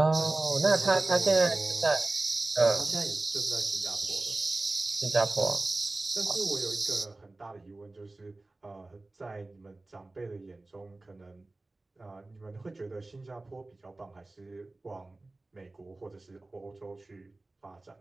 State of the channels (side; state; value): left; quieter; 3.0 dB